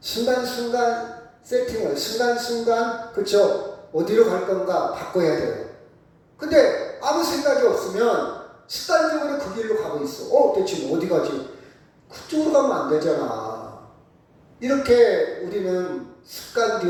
순간순간 세팅을, 순간순간, 그쵸? 어디로 갈 건가 바꿔야 돼요. 근데 아무 생각이 없으면 습관적으로 그 길로 가고 있어. 대체 어디 가지? 그쪽으로 가면 안 되잖아. 이렇게 우리는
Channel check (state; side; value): identical; both; correlation 1.00